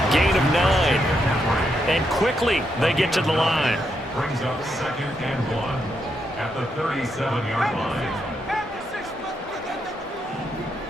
Gain of 9. And quickly they get to the line. Brings up 2nd and 1 at the 37-yard line.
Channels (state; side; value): normal; both; correlation 0.80